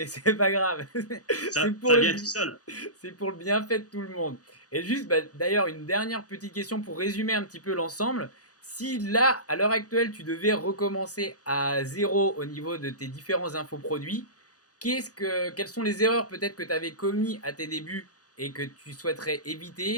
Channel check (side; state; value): right; late; 0.67 ms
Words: c'est pas grave. Ça pour vient tout seul. C'est pour le bienfait de tout le monde. Et juste, d'ailleurs, une dernière petite question pour résumer un petit peu l'ensemble. Si là, à l'heure actuelle, tu devais recommencer à zéro au niveau de tes différents infoproduits, quelles sont les erreurs peut-être que tu avais commis à tes débuts et que tu souhaiterais